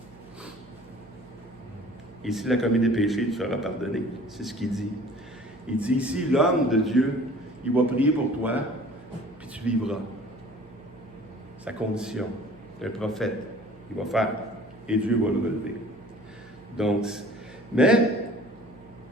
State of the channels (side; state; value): right; noise; hum, 24 dB below the sound